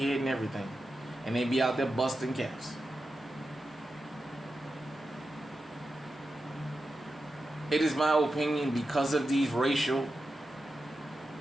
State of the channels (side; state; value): both; normal; correlation 0.90